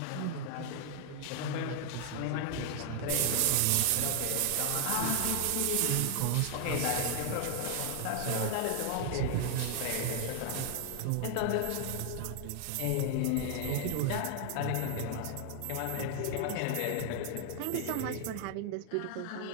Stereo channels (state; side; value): different; both; correlation 0.00